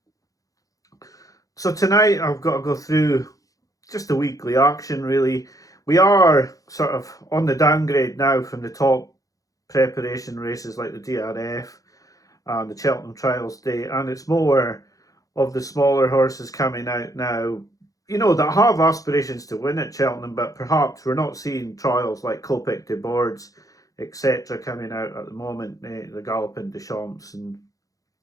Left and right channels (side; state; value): right; late; 0.17 ms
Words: So tonight I've got to go through just the weekly action really. We are sort of on the downgrade now from the top preparation races like the DRF and the Cheltenham Trials Day, and it's more of the smaller horses coming out now, that have aspirations to win at Cheltenham, but perhaps we're not seeing trials like Copic de Boards, etc. coming out at the moment, the Galopin de Champs and